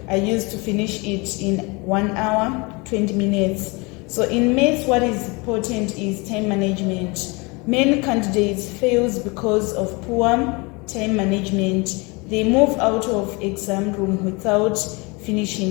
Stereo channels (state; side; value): quieter; right; 27.5 dB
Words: I used to finish it in 1 hour, 20 minutes. So in maths, what is important is time management. Many candidates fail because of poor time management. They move out of exam room without